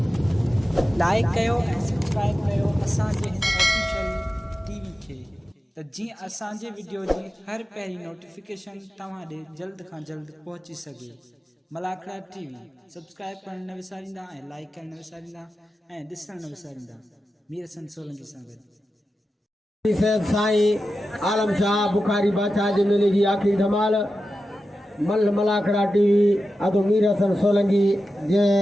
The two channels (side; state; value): both; normal; correlation 0.92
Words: लाइक कयो सब्सक्राइब कयो असांजे ऑफिशियल टीवी खे त जीअं असांजे वीडियो जी हर पहिरीं नोटिफिकेशन तव्हां ॾे जल्द खां जल्द पहुची सघे। मलाखड़ा टीवी सब्सक्राइब करण न विसारींदा ऐं लाइक करण न विसारींदा ऐं ॾिसण न विसारींदा। मीर हसन सोलंकी सां गॾु साईं आलम शाह बुखारी बादशाह जे मेले जी आखिरी धमाल मलाखड़ा टीवी अदो मीर हसन सोलंकी जे